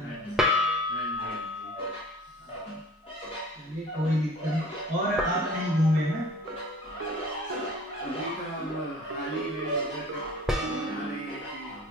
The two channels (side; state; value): both; normal; correlation 0.45